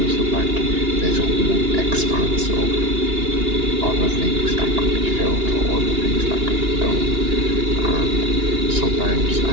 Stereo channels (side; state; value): left; late; 2.8 ms